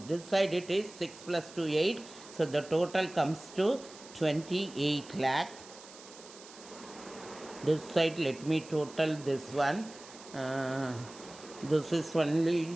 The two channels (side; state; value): right; noise; hiss, 18 dB below the sound